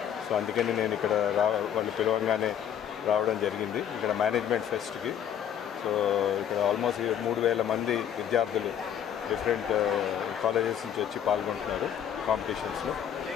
సో అందుకని నేను ఇక్కడ వాళ్ళు పిలవంగానే రావడం జరిగింది ఇక్కడ మేనేజ్మెంట్ ఫెస్ట్కి. సో ఇక్కడ ఆల్మోస్ట్ 3,000 మంది విద్యార్థులు డిఫరెంట్ కాలేజెస్ నుంచి వచ్చి పాల్గొంటున్నారు కాంపిటీషన్స్లో.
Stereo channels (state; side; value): quieter; right; 9.4 dB